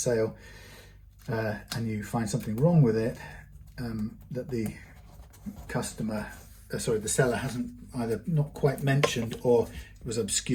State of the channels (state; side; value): identical; both; correlation 1.00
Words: and you find something wrong with it, that the the seller hasn't either not quite mentioned, or it was